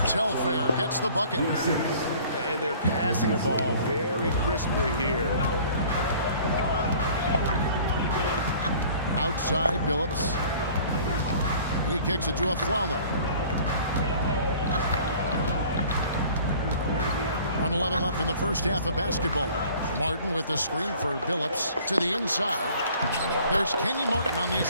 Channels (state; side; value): inverted; both; correlation -0.50